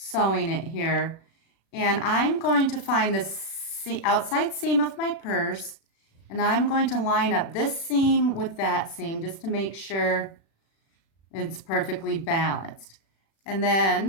it here. And I'm going to find the outside seam of my purse, and I'm going to line up this seam with that seam just to make sure it's perfectly balanced. And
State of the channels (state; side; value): late; right; 36 ms